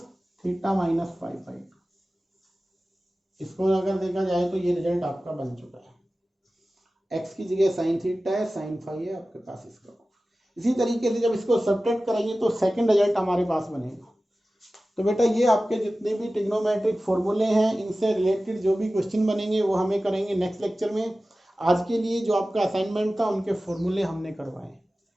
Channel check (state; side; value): normal; both; correlation 0.96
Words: theta minus five five. इसको अगर देखा जाए तो ये रिजल्ट आपका बन चुका है। x की जगह साइन थीटा है, साइन फाइव है आपके पास इसका। इसी तरीके से जब इसको सब्ट्रैक्ट करेंगे तो सेकंड रिजल्ट हमारे पास बनेगा। तो बेटा ये आपके जितने भी ट्रिग्नोमेट्रिक फॉर्मूले हैं इनसे रिलेटेड जो भी क्वेश्चन बनेंगे वो हमें करेंगे नेक्स्ट लेक्चर में। आज के लिए जो आपका असाइनमेंट था उनके फॉर्मूले हमने करवाए,